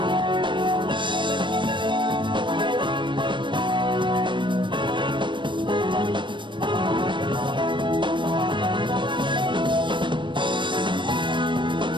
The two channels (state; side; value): late; left; 0.23 ms